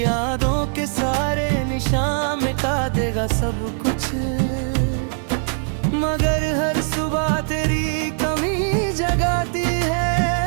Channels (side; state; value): left; silent; digital silence